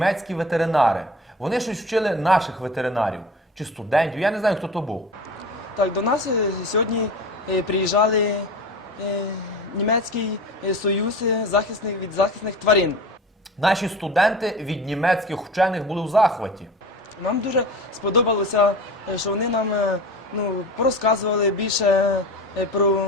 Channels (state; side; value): normal; both; correlation 0.34